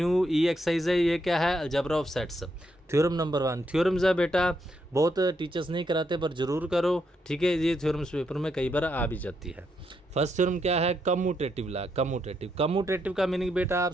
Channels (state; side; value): normal; both; correlation 0.79